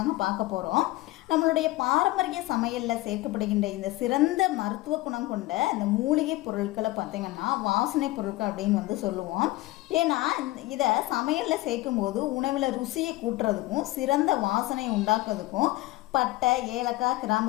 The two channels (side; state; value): right; quieter; 19.0 dB